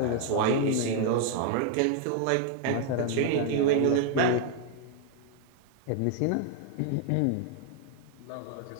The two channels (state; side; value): different; both; correlation 0.00